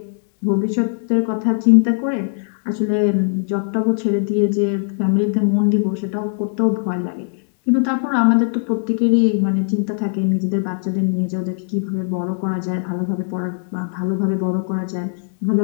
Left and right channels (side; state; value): right; silent; digital silence